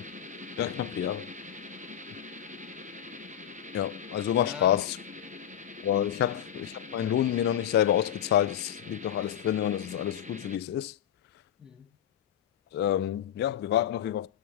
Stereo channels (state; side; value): quieter; right; 10.4 dB